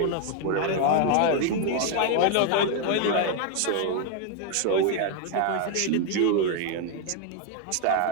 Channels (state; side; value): different; both; correlation 0.00